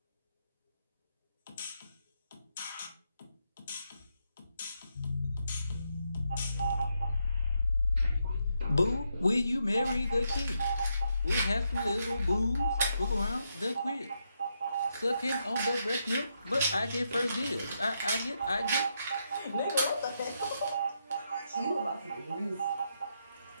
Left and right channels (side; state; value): both; inverted; correlation -0.81